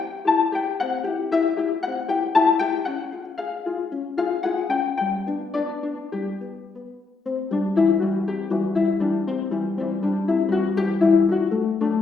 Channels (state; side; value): quieter; right; 3.8 dB